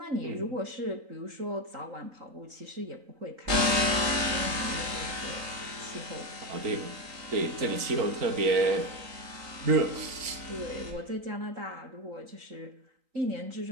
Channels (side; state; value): left; late; 3.9 ms